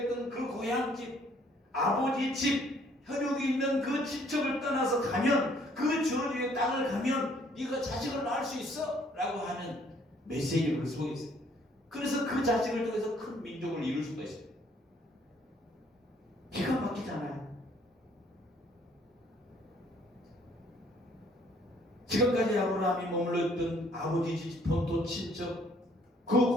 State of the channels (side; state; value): both; normal; correlation 0.63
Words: 그 고향집, 아버지 집, 혈육이 있는 그 집적을 떠나서 가면, 그 저주의 땅을 가면 네가 자식을 낳을 수 있어? 라고 하는 메시지가 그 속에 있어요. 그래서 그 자식을 통해서 큰 민족을 이룰 수가 있어요. 기가 막히잖아요. 지금까지 아브라함이 머물렀던 아버지 집, 본토, 친척, 그